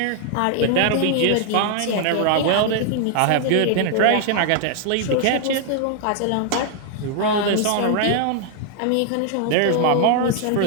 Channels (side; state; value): both; different; correlation 0.00